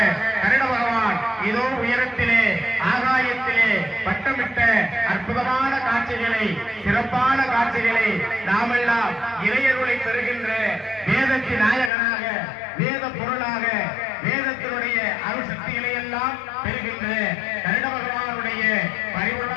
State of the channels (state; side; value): drops out; right; at 11.9 s